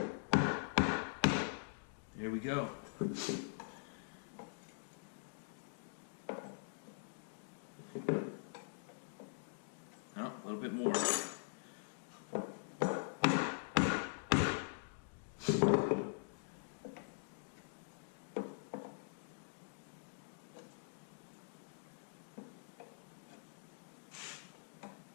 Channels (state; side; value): silent; right; digital silence